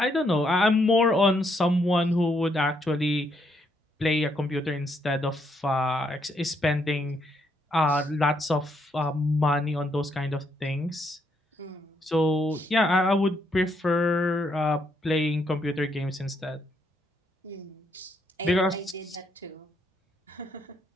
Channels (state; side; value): normal; both; correlation 0.74